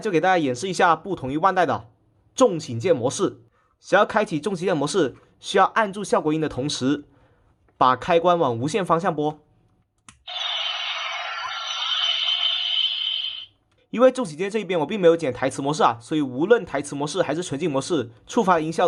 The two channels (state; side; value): identical; both; correlation 1.00